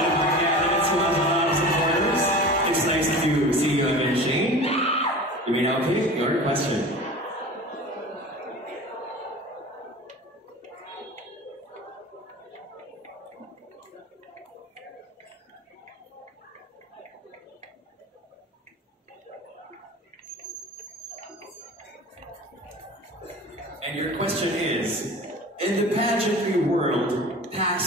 of our candidates who has a lot of supporters. It's nice to see you again, Shane. You may now pick your question. And your question is, in the pageantry world,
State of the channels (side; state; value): both; normal; correlation 0.37